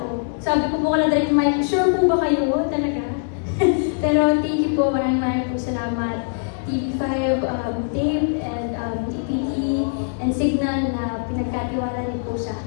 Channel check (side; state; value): right; silent; 64 dB below the other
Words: Sabi ko po kala direct Mike, sure po ba kayo talaga? Pero thank you po, maraming po salamat. TV5, Dave, and TPT, and Signal na pinagkatiwala niyo po sa